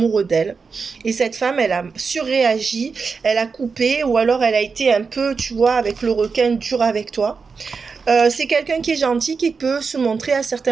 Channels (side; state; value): left; quieter; 5.1 dB